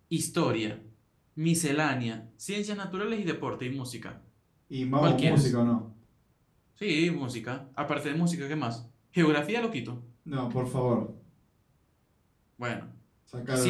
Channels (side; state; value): both; identical; correlation 1.00